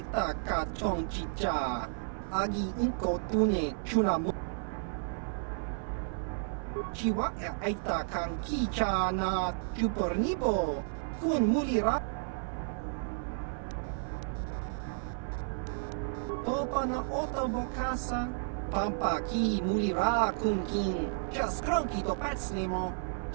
ka tong chicha. Agi inko tune chunamu. Chiwa aita kan kicha na chupornibo. Kun mulira. Topa na otavokasa. Pampa ki mulira kun kin. Just cronky to patslimo.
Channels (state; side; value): silent; left; 56 dB below the other